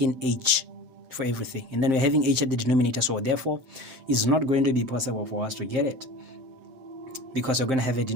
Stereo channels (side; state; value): left; late; 7.7 ms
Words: h for everything, and then we're having h at the denominator, so therefore it's not going to be possible for us to get it, because we're going to have